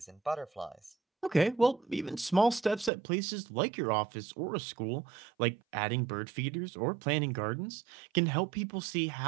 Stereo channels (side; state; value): left; drops out; at 2.9 s